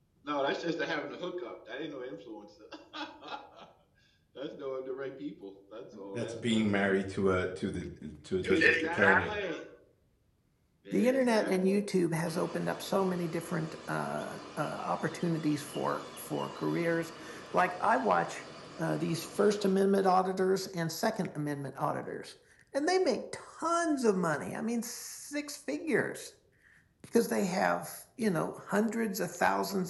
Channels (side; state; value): both; identical; correlation 1.00